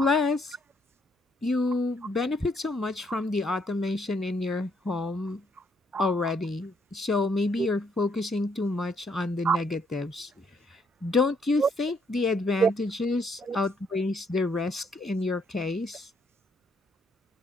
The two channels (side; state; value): both; normal; correlation 0.71